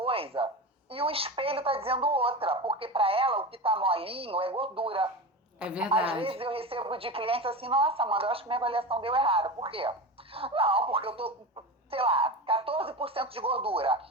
e o espelho está dizendo outra, porque para ela o que está molinho é gordura. É verdade. Às vezes eu recebo de clientes assim, nossa, Amanda, eu acho que minha avaliação deu errado. Por quê? Não, porque eu tô com, 14% de gordura,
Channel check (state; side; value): normal; both; correlation 0.25